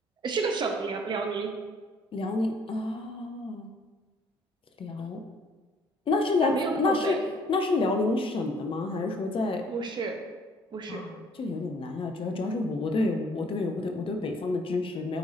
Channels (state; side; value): normal; both; correlation 0.60